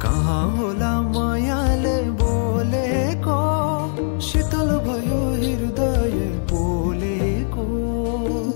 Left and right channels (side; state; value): right; silent; 58 dB below the other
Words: कहाँ होला मायाले बोलेको शीतल भयो हृदय बोलेको